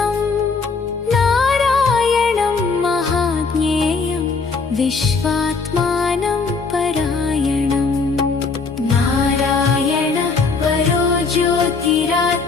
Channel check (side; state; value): right; quieter; 4.5 dB